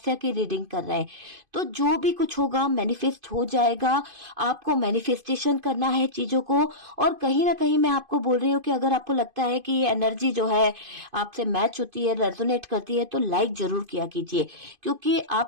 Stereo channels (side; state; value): left; late; 2.5 ms